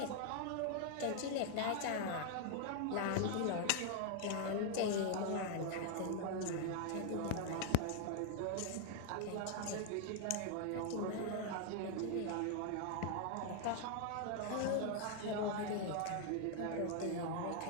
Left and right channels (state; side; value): different; both; correlation 0.00